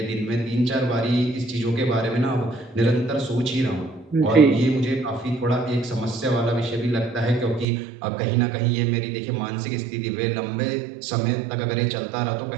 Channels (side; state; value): left; drops out; at 7.7 s